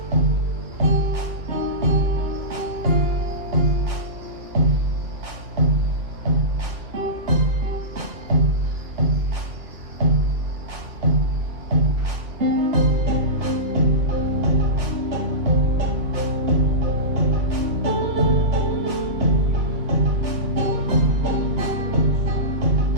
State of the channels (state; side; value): late; left; 2.2 ms